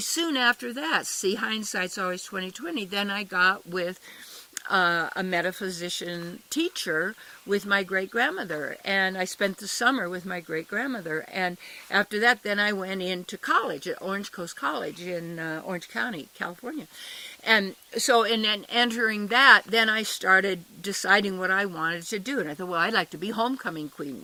soon after that, see, hindsight's always 20/20, then I got with a metaphysician teacher with my great-grandmother. And I spent the summer with my great-grandmother. And after that, then I went into college at Orange Coast College in Orange County, California. And so in entering that, then I started deciding what I wanted to do. And I thought, well, I'd like to be homecoming queen.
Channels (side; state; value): both; identical; correlation 1.00